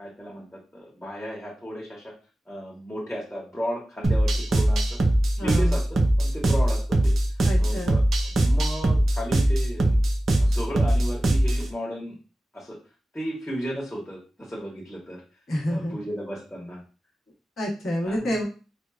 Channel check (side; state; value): both; normal; correlation 0.96